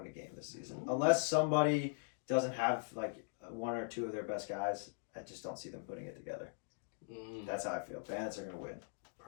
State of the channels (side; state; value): right; silent; digital silence